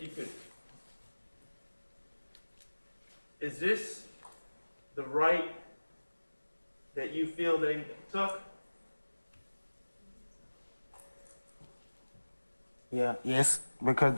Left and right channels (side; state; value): both; inverted; correlation -1.00